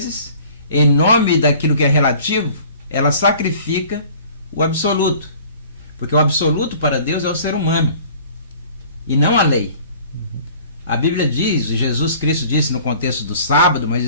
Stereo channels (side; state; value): both; inverted; correlation -0.49